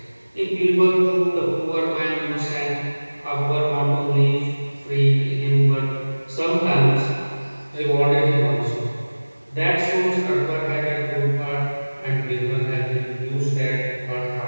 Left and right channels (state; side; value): inverted; both; correlation -1.00